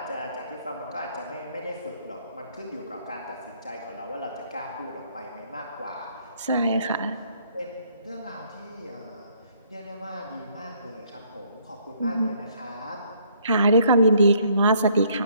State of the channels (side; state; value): both; inverted; correlation -0.65